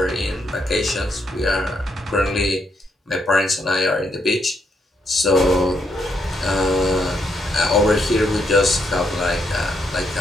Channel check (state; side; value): normal; both; correlation 0.77